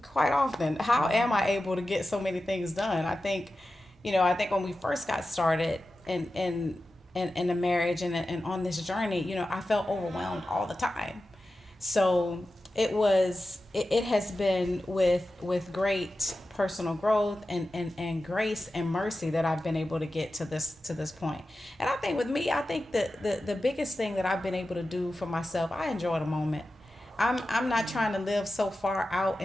quite often. How am I able to get so many things done? I think when we first got started in the marriage and on this journey, you know, I felt overwhelmed all the time. So it has been with great personal growth and grace and mercy that I've been able to get to this point. And I think with me, I think that the biggest thing that I've been able to do for myself, I enjoy the moment. I'm not trying to live so far out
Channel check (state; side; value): normal; both; correlation 0.93